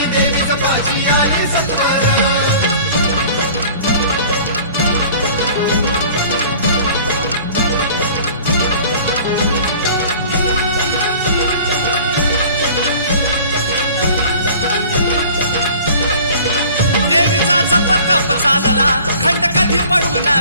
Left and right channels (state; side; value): inverted; both; correlation -0.46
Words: देवीचं पाची आली सत्वर। जप चालला खंड कधी पडू ना